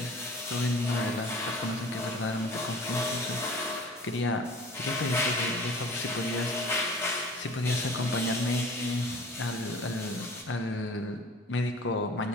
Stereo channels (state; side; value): normal; both; correlation 0.45